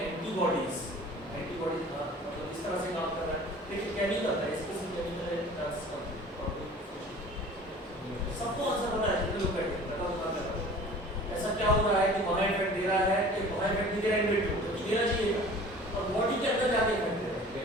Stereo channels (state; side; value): normal; both; correlation 0.45